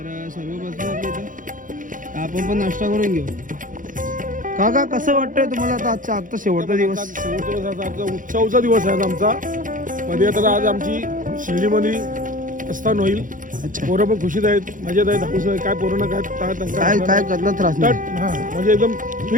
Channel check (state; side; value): late; left; 0.39 ms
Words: सर्व बसले आपल्या इथं आपण पण नाश्ता करून घेऊ. काका कसं वाटतंय तुम्हाला आता आजचा शेवटचा दिवस? शेवटचा दिवस आजचा उत्सवचा दिवस आहे आमचा. मध्ये तर आज आमची शिर्डीमध्ये प्रस्थान होईल. पोरं पण खुशीत आहेत, मजेत आहेत, हाऊस आहे. काय पोरांना काय काय कसला त्रास नाही. हा म्हणजे एकदम